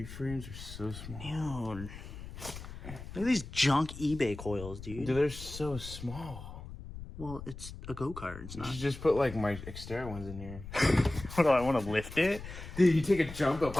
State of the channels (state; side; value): noise; left; rumble, 12 dB below the sound